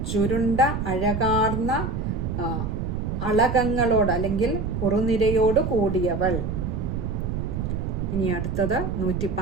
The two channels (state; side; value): noise; right; rumble, 3 dB below the sound